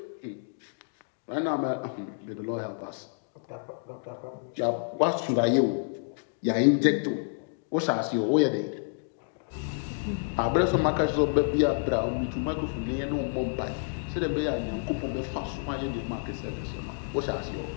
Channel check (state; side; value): silent; right; digital silence